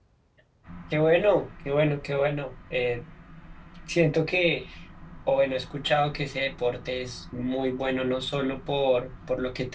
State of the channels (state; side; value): identical; both; correlation 1.00